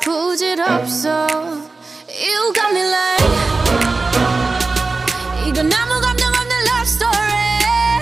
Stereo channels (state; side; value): quieter; left; 3.7 dB